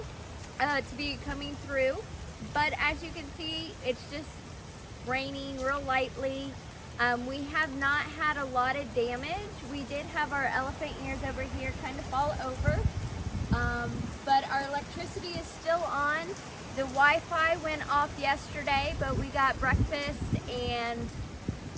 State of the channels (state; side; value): identical; both; correlation 1.00